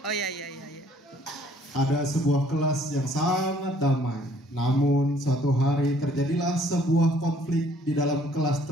ada sebuah kelas yang sangat damai. Namun suatu hari terjadilah sebuah konflik di dalam kelas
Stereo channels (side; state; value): both; normal; correlation 0.61